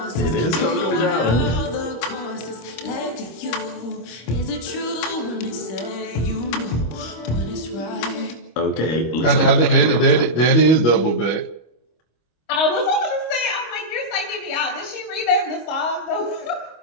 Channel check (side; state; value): right; late; 25 ms